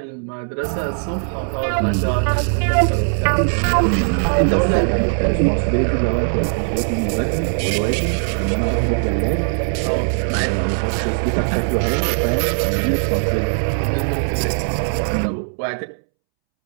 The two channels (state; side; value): silent; left; 66 dB below the other